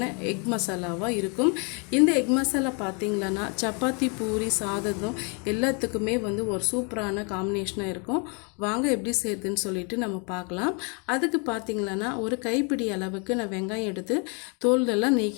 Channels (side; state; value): right; quieter; 35.0 dB